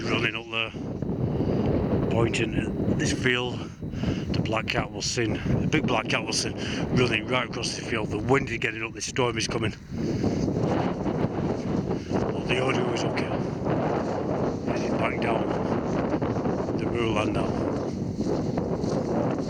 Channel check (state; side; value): identical; both; correlation 1.00